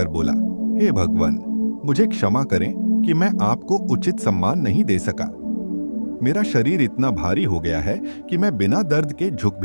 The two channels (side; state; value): both; inverted; correlation -1.00